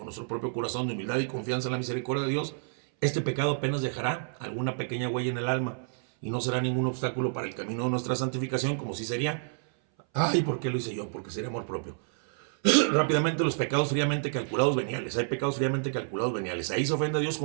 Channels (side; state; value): left; silent; 58 dB below the other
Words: nuestro propio corazón de humildad y confianza en la misericordia de Dios, este pecado apenas dejará alguna pequeña huella en el alma y no será ningún obstáculo para el camino de nuestra santificación, como si sería, ay, ¿por qué lo hice yo? Porque sería amor propio. Rápidamente, los pecados fríamente calculados veniales. Hay pecados fríamente calculados veniales. Ahí se ofende a Dios